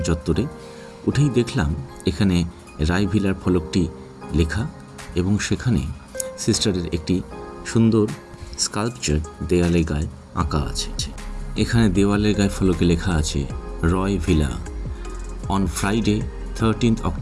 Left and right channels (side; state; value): both; identical; correlation 1.00